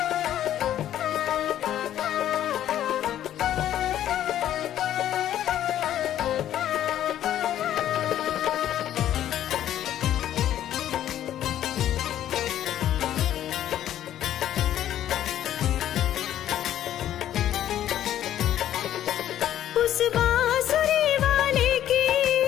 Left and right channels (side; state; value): right; quieter; 11.6 dB